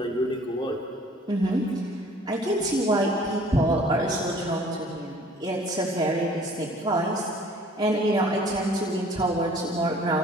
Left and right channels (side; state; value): both; normal; correlation 0.53